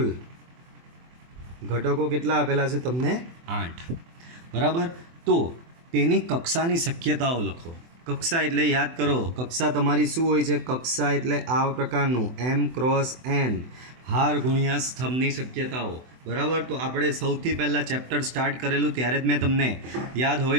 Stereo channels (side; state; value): left; late; 24 ms